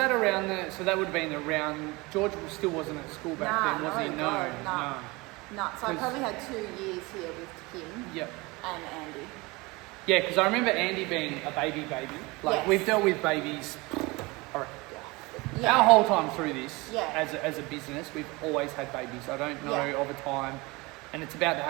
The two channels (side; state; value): left; quieter; 24.1 dB